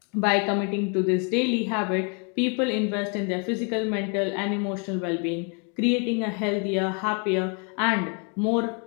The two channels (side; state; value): right; quieter; 37.3 dB